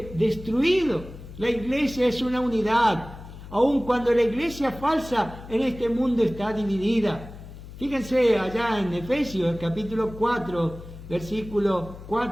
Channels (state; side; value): noise; left; hum, 15 dB below the sound